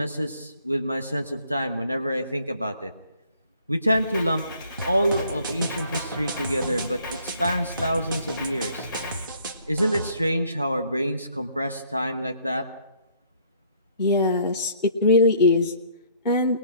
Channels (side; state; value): both; inverted; correlation -0.61